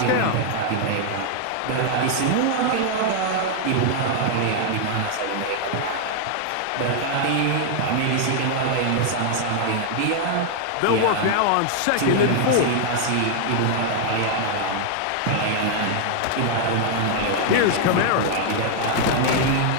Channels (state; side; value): different; both; correlation 0.00